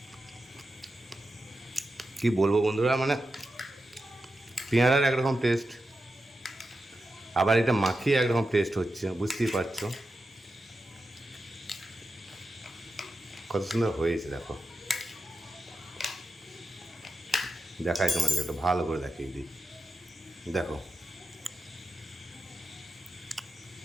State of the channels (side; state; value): both; normal; correlation 0.90